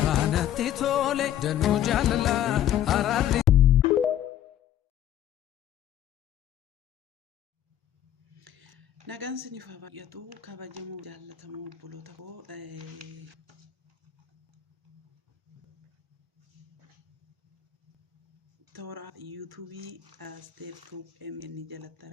natti tole danuu jaalala araarri nagaan siniif haa baay'atu kabajamoo jaallatamoo obboloota koo toora yuutuubii Asteer Tuub MN jalatti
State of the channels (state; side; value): quieter; right; 11.3 dB